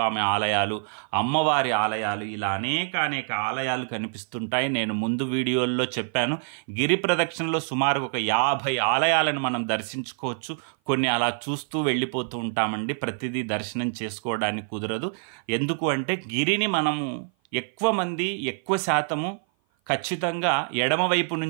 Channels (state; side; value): silent; left; 56 dB below the other